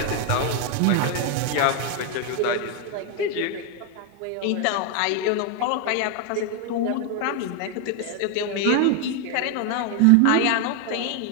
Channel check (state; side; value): different; both; correlation 0.01